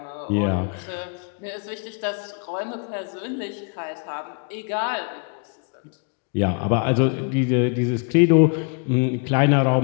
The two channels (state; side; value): quieter; right; 38.4 dB